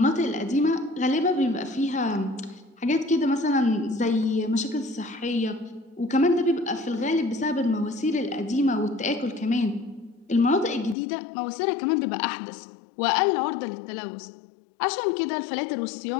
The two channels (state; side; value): drops out; right; at 11.0 s